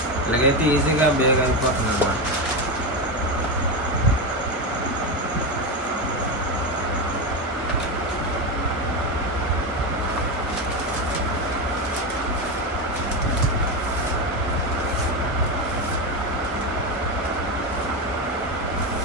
ఇలాగైతే ఈజీగా బేగ్ అయిపోతుంది అన్నమాట.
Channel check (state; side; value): normal; both; correlation 0.14